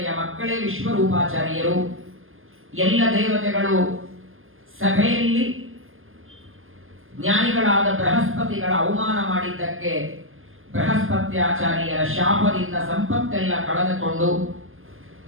ಮಕ್ಕಳೇ ವಿಶ್ವರೂಪಾಚಾರ್ಯರು. ಎಲ್ಲ ದೇವತೆಗಳು ಸಭೆಯಲ್ಲಿ ಜ್ಞಾನಿಗಳಾದ ಬೃಹಸ್ಪತಿಗಳ ಅವಮಾನ ಮಾಡಿದ್ದಕ್ಕೆ ಬೃಹಸ್ಪತ್ಯಾಚಾರ್ಯರ ಶಾಪದಿಂದ ಸಂಪತ್ತೆಲ್ಲ ಕಳೆದುಕೊಂಡು,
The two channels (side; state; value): left; late; 0.60 ms